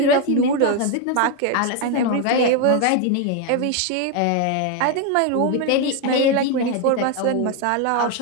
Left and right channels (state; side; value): different; both; correlation 0.01